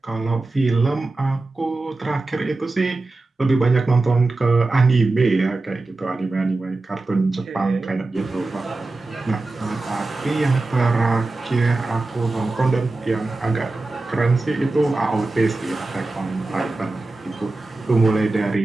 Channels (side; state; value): left; quieter; 3.2 dB